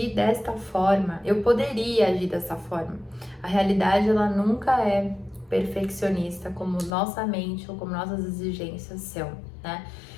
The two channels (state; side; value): drops out; right; at 7.0 s